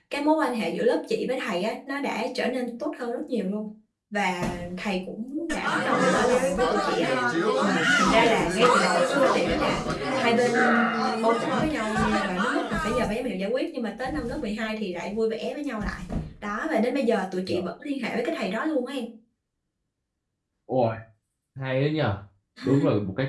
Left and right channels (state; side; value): identical; both; correlation 1.00